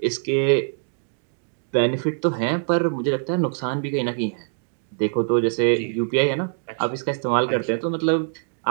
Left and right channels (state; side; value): silent; left; digital silence